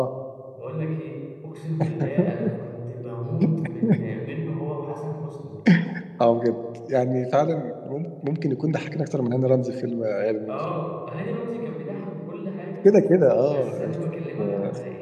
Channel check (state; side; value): identical; both; correlation 1.00